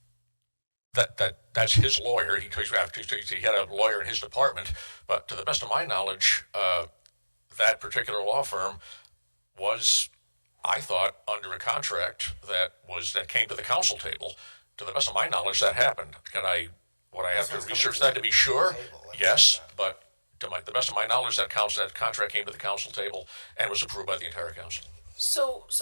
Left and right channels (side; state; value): both; inverted; correlation -1.00